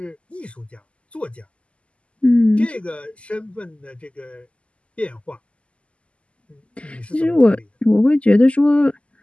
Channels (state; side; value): late; right; 0.057 ms